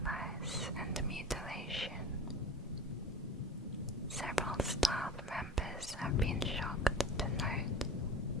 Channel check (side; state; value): both; normal; correlation 0.36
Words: and mutilation. Several staff members have been shocked to note